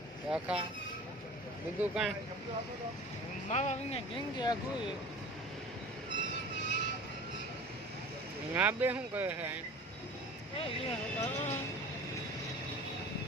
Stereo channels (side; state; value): both; normal; correlation 0.41